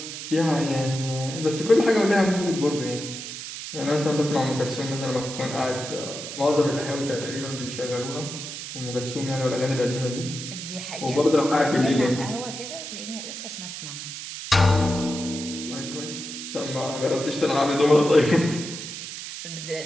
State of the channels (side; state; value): right; noise; hiss, 9 dB below the sound